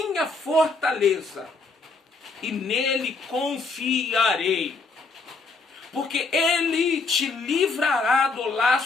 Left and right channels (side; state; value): right; quieter; 3.9 dB